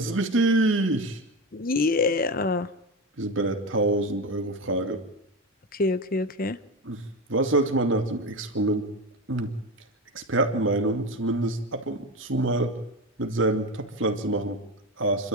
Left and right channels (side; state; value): both; normal; correlation 0.20